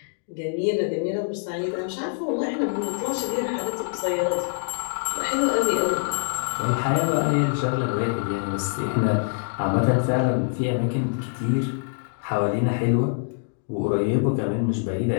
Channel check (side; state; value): right; silent; digital silence